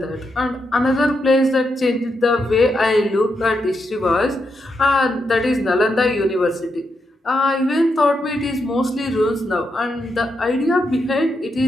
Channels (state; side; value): normal; both; correlation 0.83